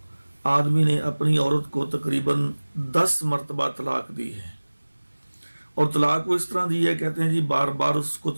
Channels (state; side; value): inverted; both; correlation -1.00